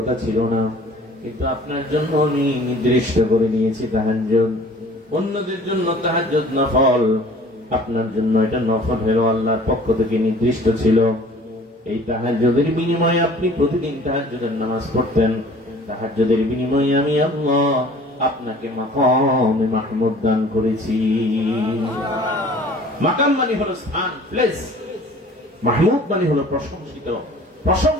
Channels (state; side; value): normal; both; correlation 0.48